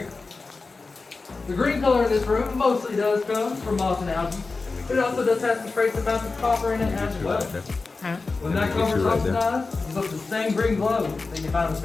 The green color in this room mostly does come from moss and algae, but it also does have some trace amounts of copper in it as well. When that copper is oxidized, it's up the same green glow that you find in the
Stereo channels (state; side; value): quieter; right; 3.9 dB